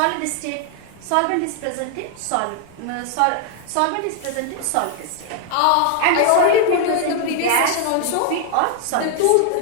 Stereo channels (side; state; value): both; different; correlation 0.00